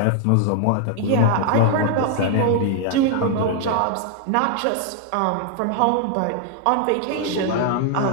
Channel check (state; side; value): different; both; correlation 0.00